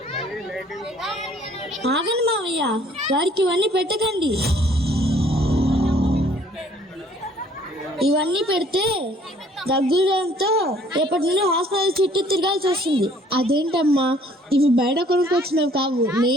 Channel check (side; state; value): both; normal; correlation 0.59